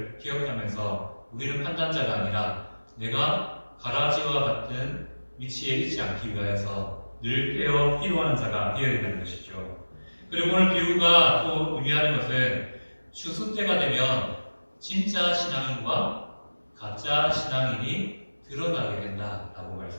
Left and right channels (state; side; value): inverted; both; correlation -1.00